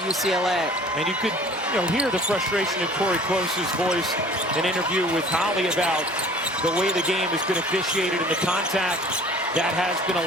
UCLA. And you could hear the frustration in Corey Close's voice, an interview with Holly about the way the game has been officiated and the contact that has been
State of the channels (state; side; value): normal; both; correlation 0.48